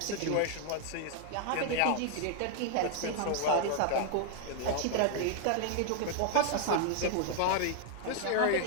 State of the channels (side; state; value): both; different; correlation 0.00